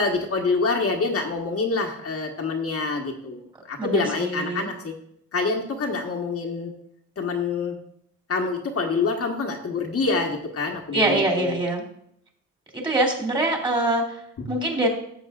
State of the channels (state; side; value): normal; both; correlation 0.20